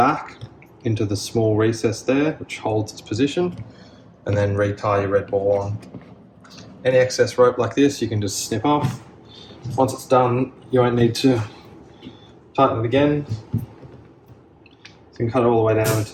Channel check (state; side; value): identical; both; correlation 1.00